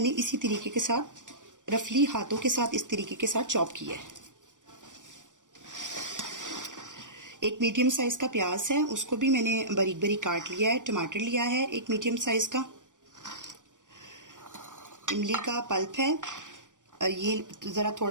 इसी तरीके के साथ रफली हाथों के साथ इस तरीके के साथ चॉप किया है। 1 मीडियम साइज का प्याज है, उसको भी मैंने बारीक बारीक काट लिया है। टमाटर लिया है 1 मीडियम साइज का। इमली का पल्प है, ये जरा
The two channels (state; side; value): late; left; 0.87 ms